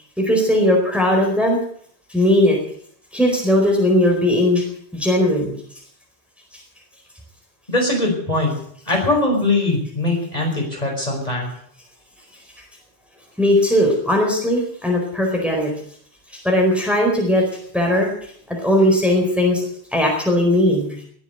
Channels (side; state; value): both; normal; correlation 0.32